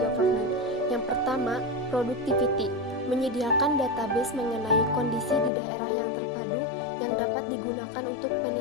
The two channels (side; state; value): right; drops out; at 5.5 s